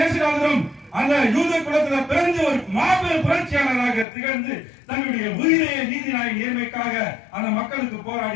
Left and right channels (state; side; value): drops out; right; at 4.0 s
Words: அந்த யூத குலத்தில் பிறந்து ஒரு மாபெரும் புரட்சியாளராக திகழ்ந்து தன்னுடைய உயிரையை நீதிநாயக நேர்மைக்காக அந்த மக்களுக்கு